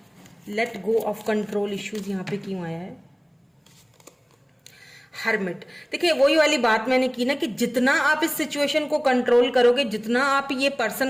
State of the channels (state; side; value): identical; both; correlation 1.00